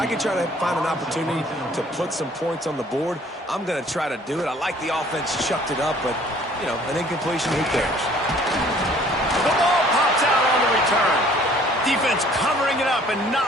can try to find an opportunity to put some points on the board, I'm going to try to do it. I like the offense chucked it up, but, you know, an incompletion, who cares? The ball pops out on the return. Defense covering it up and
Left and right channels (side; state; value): both; normal; correlation 0.56